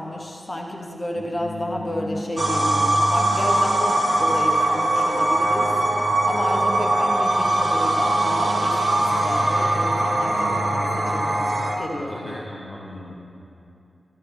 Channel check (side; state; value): both; normal; correlation 0.93